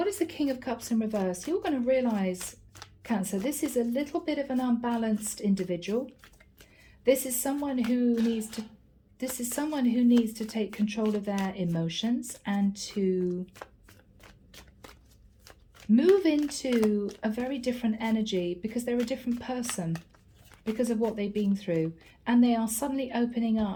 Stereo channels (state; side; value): identical; both; correlation 1.00